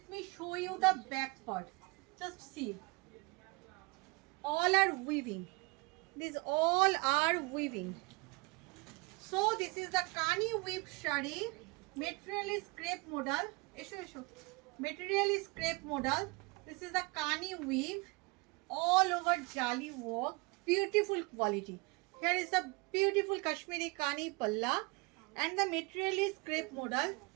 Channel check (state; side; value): quieter; left; 26.6 dB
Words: me show you the back part, just see, all are weaving, these all are weaving. So this is the Kani weave shari, material is crepe modal, material is crepe modal. This is the Kani weave, all over jali work, beautiful quality. Here is the beautiful Kashmiri Kani palla and the material is crepe modal.